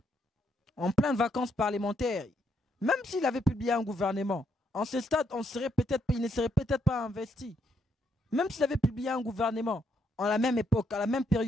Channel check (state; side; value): normal; both; correlation 0.75